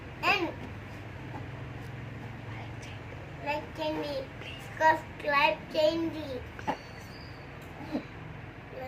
and like candy, subscribe candy,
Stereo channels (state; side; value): identical; both; correlation 1.00